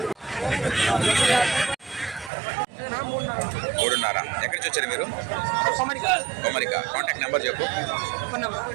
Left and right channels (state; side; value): drops out; left; at 2.3 s